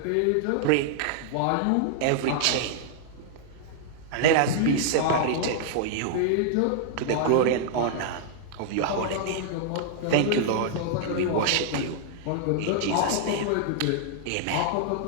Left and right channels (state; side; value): different; both; correlation -0.01